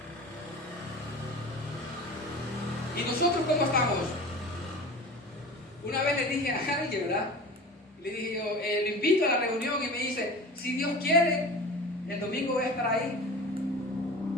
¿y nosotros cómo estamos? Una vez le dije a alguien, ¿verdad? Le dije yo, lo invito a la reunión, y me dice: si Dios quiere, el domingo voy a estar ahí.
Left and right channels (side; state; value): both; normal; correlation 0.35